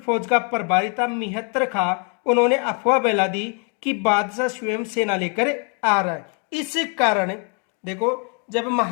का प्रभारी था मिहत्तर खां, उन्होंने अफवाह फैला दी कि बादशाह स्वयं सेना लेकर आ रहा है। इस कारण देखो जब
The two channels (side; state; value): right; quieter; 38.0 dB